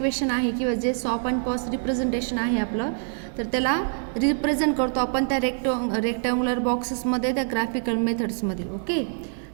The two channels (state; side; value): silent; left; digital silence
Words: आहे किंवा जे सॉप आणि पॉस रिप्रेझेंटेशन आहे आपलं, तर त्याला रिप्रेझेंट करतो आपण त्या रेक्टँग्युलर बॉक्सेसमध्ये, त्या ग्राफिकल मेथड्समध्ये. ओके.